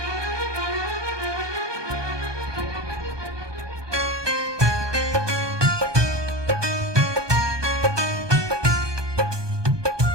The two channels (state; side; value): late; left; 1.2 ms